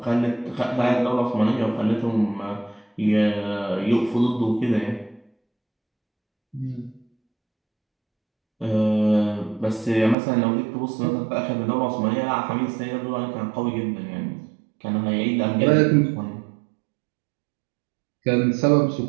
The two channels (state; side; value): drops out; left; at 10.2 s